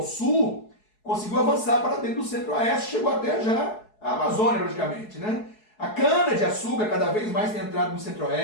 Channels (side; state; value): right; late; 4.7 ms